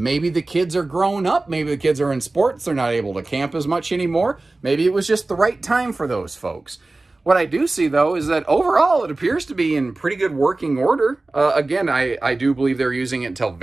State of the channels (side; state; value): left; quieter; 3.1 dB